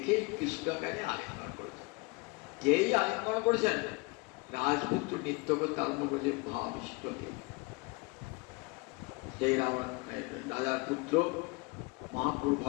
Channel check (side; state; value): right; quieter; 27.5 dB